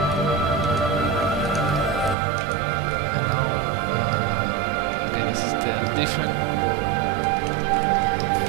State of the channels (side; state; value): left; drops out; at 2.1 s